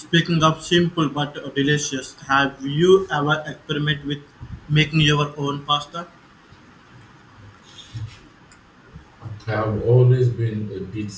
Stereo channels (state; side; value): identical; both; correlation 1.00